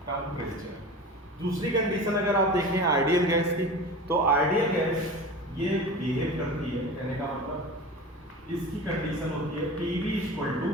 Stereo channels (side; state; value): both; normal; correlation 0.33